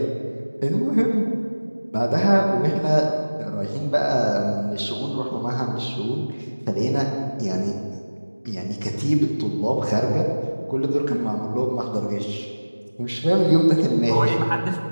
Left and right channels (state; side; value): inverted; both; correlation -1.00